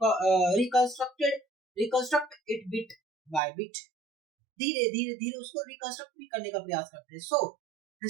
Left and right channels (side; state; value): left; drops out; at 3.4 s